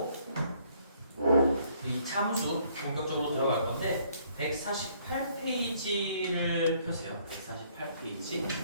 이 참수 본격적으로 들어갈 건데 148페이지를 펴세요. 148페이지.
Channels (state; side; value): inverted; both; correlation -0.64